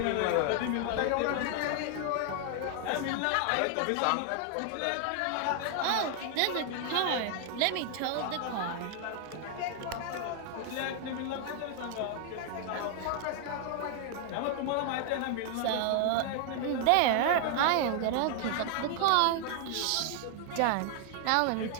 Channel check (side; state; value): both; different; correlation 0.00